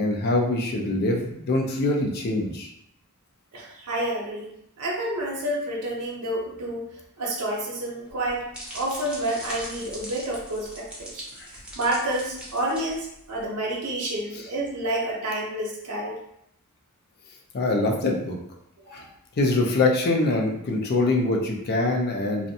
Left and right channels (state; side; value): normal; both; correlation 0.21